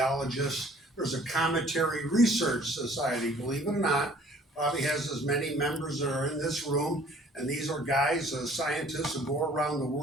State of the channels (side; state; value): both; normal; correlation 0.54